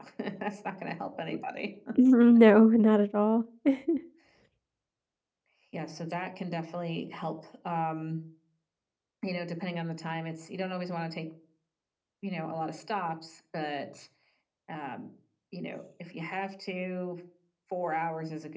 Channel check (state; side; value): identical; both; correlation 1.00